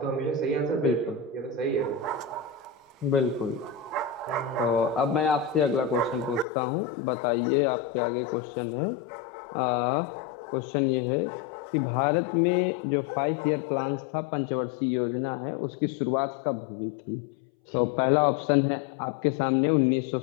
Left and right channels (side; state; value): right; drops out; at 6.5 s